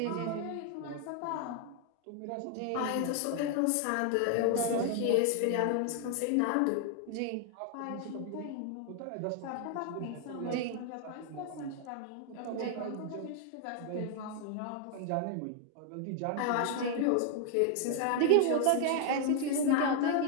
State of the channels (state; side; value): different; both; correlation 0.00